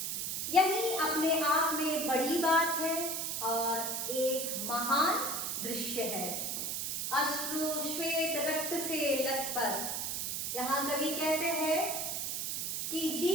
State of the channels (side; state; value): right; noise; hiss, 2 dB below the sound